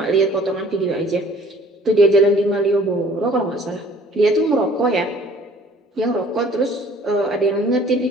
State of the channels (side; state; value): both; normal; correlation 0.54